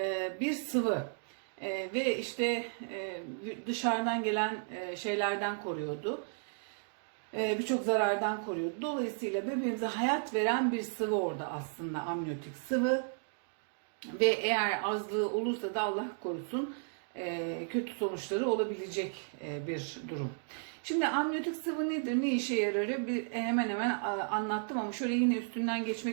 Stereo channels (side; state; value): left; silent; digital silence